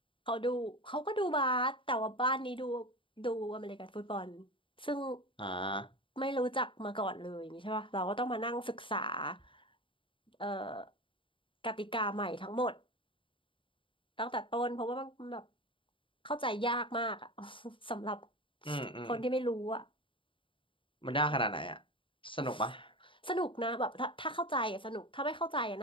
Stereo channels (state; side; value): late; right; 0.25 ms